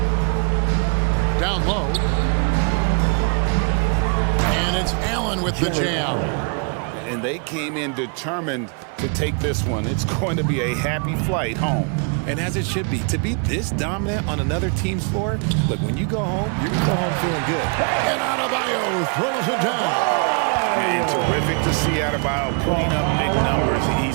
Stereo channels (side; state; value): left; quieter; 38.8 dB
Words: Down low. And it's Allen with the jam. And they came in determined to take this one. It's going to be a happy flight home. And as it should be, to be this dominant on another team's floor, look, when you go home, you're going to go home feeling good. And Adebayo throws it down. And terrific to see Adebayo putting up big numbers.